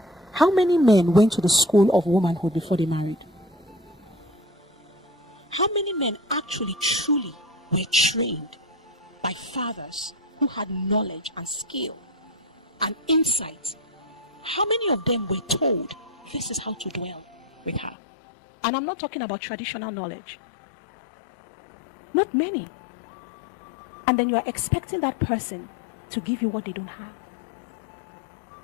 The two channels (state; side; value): drops out; right; at 17.9 s